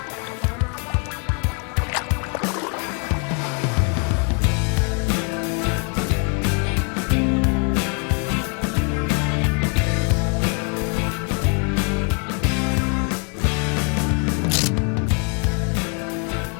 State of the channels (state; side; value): quieter; right; 38.7 dB